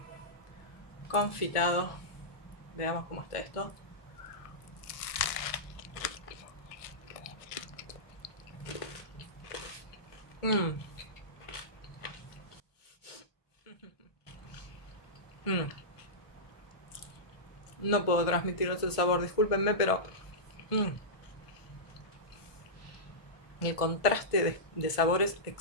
confitado. Veamos cómo está esto. No puedo transmitiros el sabor, discúlpenme, pero el contraste de sabores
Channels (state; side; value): late; right; 1.5 ms